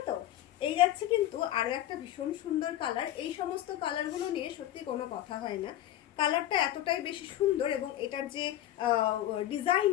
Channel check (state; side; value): quieter; right; 13.1 dB